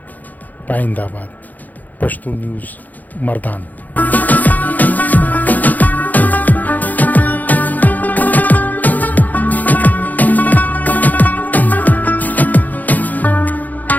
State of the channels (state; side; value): late; right; 0.081 ms